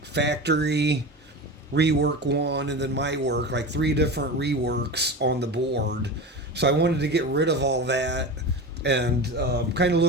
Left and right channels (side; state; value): both; normal; correlation 0.28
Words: factory rework one, and then my work, like three different reworks on the board. So I wanted to get rid of all that, and kind of